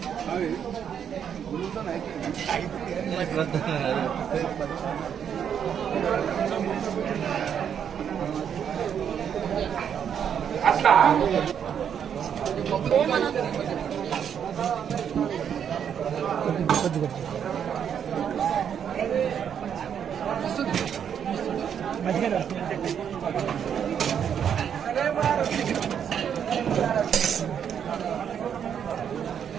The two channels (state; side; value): quieter; left; 8.3 dB